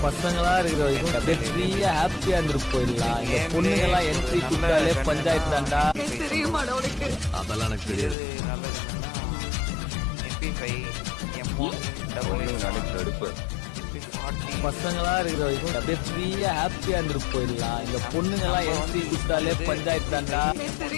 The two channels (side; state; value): right; drops out; at 8.2 s